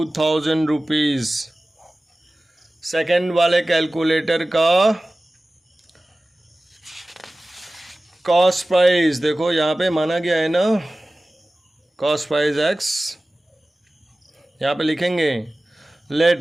रुपीज़। सेकेंड वाले कैलकुलेटर का कॉस्ट प्राइस देखो यहाँ पे माना गया है ना, कॉस्ट प्राइस एक्स, यहाँ पे लिखेंगे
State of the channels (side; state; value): both; normal; correlation 0.97